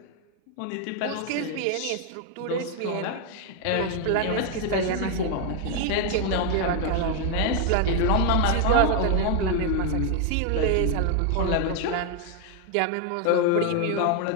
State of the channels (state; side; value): different; both; correlation 0.01